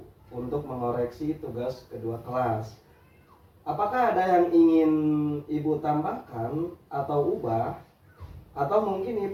untuk mengoreksi tugas kedua kelas. Apakah ada yang ingin Ibu tambahkan atau ubah? Atau mungkin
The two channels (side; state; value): both; identical; correlation 1.00